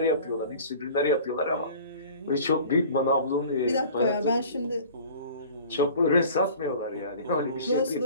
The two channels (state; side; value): inverted; both; correlation -0.45